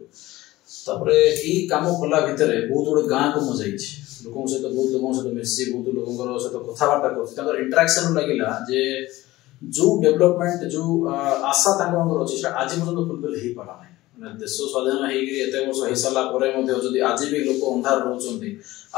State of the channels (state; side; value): quieter; right; 17.8 dB